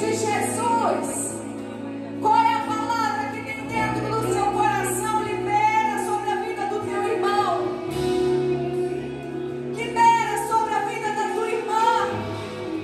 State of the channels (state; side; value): identical; both; correlation 1.00